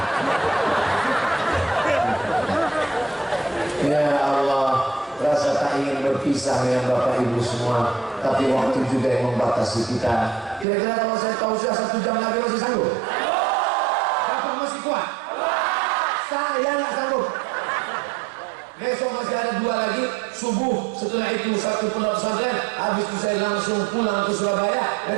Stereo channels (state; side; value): drops out; left; at 10.7 s